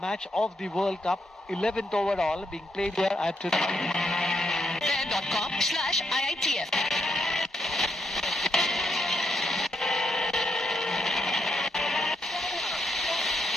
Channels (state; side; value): normal; both; correlation 0.79